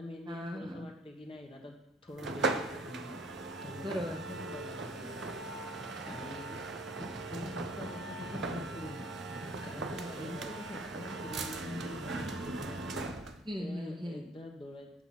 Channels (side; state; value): both; normal; correlation 0.53